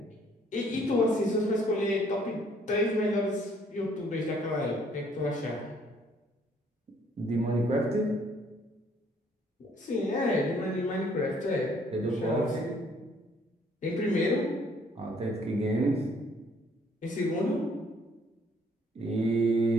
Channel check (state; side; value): normal; both; correlation 0.63